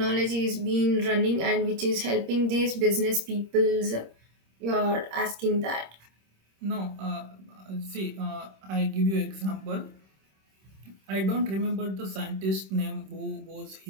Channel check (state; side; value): late; left; 26 ms